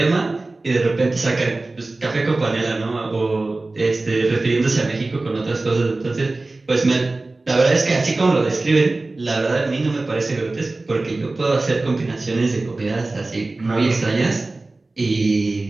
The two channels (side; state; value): left; quieter; 3.2 dB